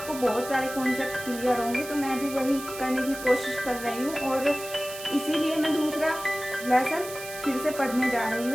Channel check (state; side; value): noise; right; hiss, 12 dB below the sound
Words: बहुत सारे कॉन्सेप्ट क्लियर होंगे। तो मैं भी वही करने की कोशिश कर रही हूँ और इसीलिए मैं दूसरा लेसन फिर से पढ़ने जा रही